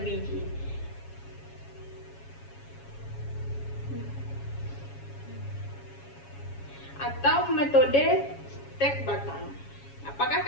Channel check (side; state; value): right; late; 7.2 ms